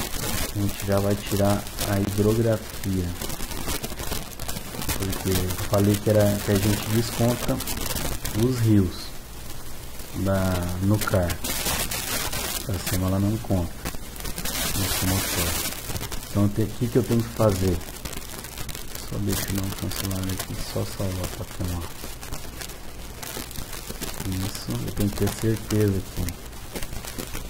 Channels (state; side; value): identical; both; correlation 1.00